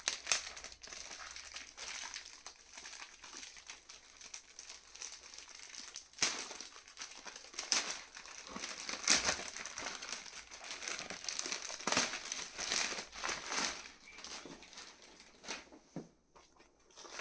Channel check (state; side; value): identical; both; correlation 1.00